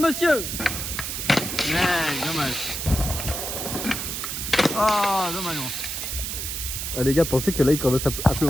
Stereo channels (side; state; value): right; noise; hiss, 4 dB below the sound